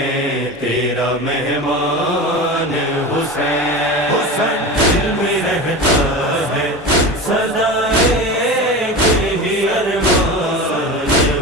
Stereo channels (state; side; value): normal; both; correlation 0.28